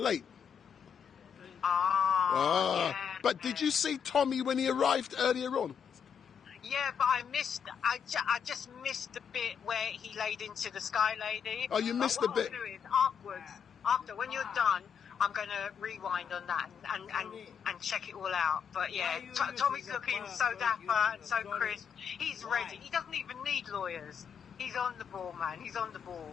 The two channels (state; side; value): quieter; right; 7.3 dB